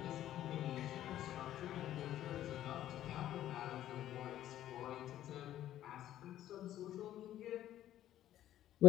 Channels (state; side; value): quieter; right; 12.5 dB